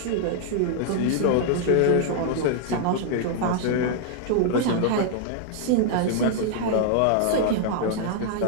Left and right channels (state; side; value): different; both; correlation 0.00